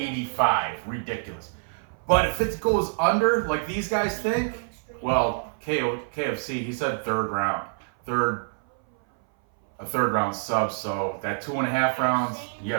Ridiculous. But if it goes under, like these guys think, well, KFC, he said third round. A third round sub, so that 2.5 rounds, you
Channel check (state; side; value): silent; left; 58 dB below the other